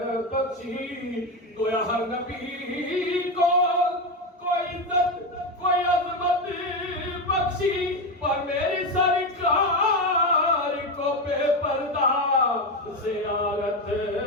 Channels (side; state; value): both; normal; correlation 0.14